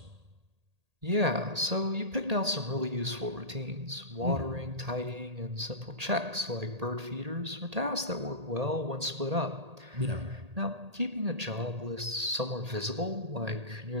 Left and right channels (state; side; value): late; left; 1.8 ms